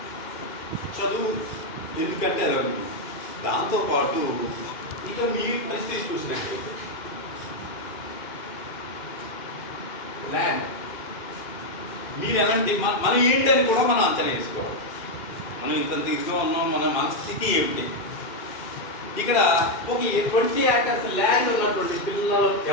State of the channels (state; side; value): late; right; 2.4 ms